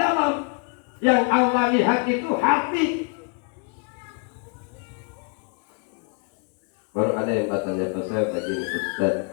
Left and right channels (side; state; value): right; quieter; 37.9 dB